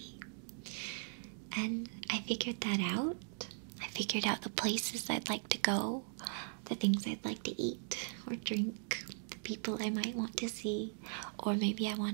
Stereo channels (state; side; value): silent; left; digital silence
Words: And I figured that out. I figured out the places I'd like to go, the things I'd like to eat or drink, the people I might want to see, or maybe I